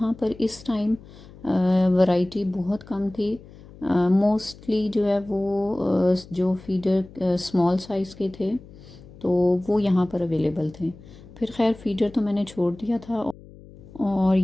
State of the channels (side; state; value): left; noise; hum, 20 dB below the sound